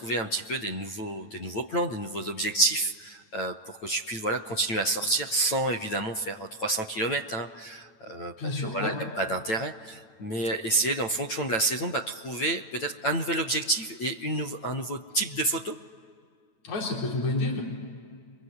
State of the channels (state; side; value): late; right; 9.1 ms